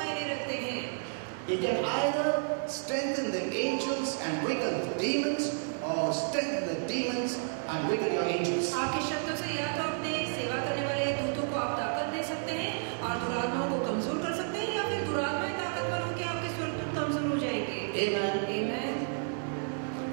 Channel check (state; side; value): silent; left; digital silence